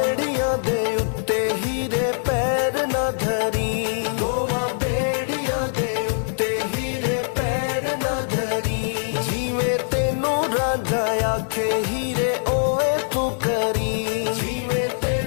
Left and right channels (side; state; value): right; silent; digital silence